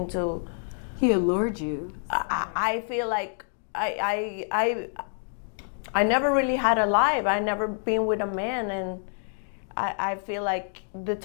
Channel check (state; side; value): silent; right; digital silence